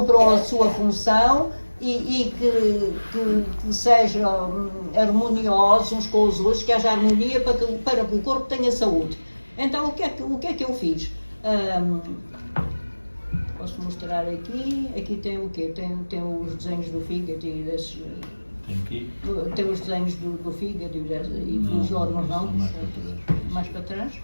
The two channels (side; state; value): both; inverted; correlation -1.00